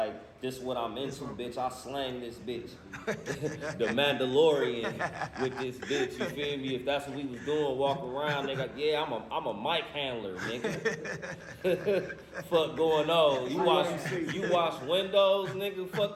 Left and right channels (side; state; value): both; identical; correlation 1.00